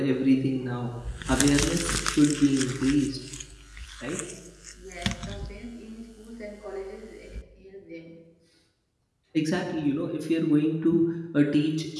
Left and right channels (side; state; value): both; identical; correlation 1.00